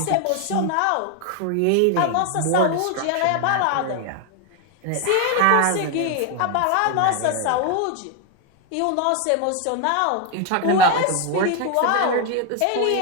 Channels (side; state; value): both; different; correlation 0.01